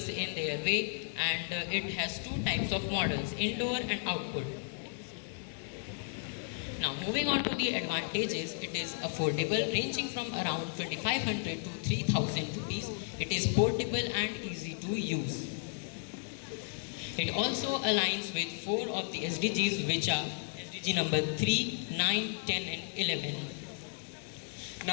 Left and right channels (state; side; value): silent; right; 55 dB below the other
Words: in their way, and it has two types of models, indoor and outdoor. Now, moving on to the advantages, it is affordable, ranging from around 2500 to 3000 rupees. It is portable and easy to use. It also aligns with 4 of the SDGs, which are SDG number 3, 9, 10 and 11.